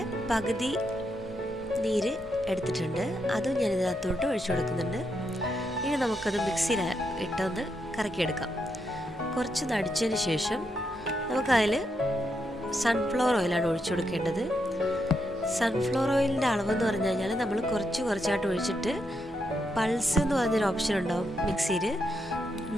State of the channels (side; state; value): both; normal; correlation 0.81